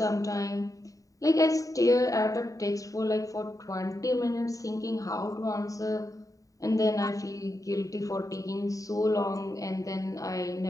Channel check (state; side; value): late; right; 0.16 ms